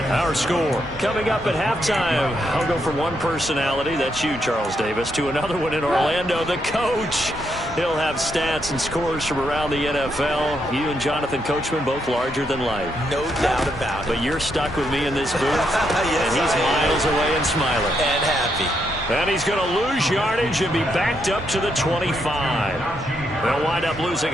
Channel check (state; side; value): normal; both; correlation 0.78